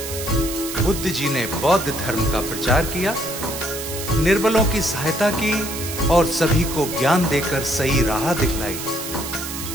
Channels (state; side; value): noise; right; hiss, 7 dB below the sound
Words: बुद्ध जी ने बौद्ध धर्म का प्रचार किया, निर्बलों की सहायता की और सभी को ज्ञान देकर सही राह दिखलाई।